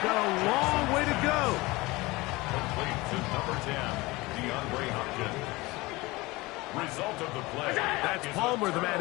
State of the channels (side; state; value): right; quieter; 21.9 dB